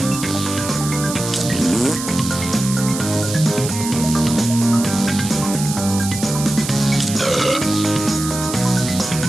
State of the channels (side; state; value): right; noise; hiss, 7 dB below the sound